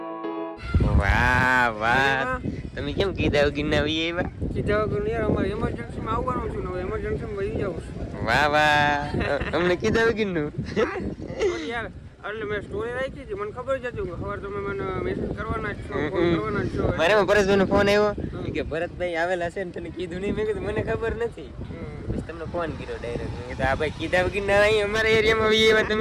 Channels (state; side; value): identical; both; correlation 1.00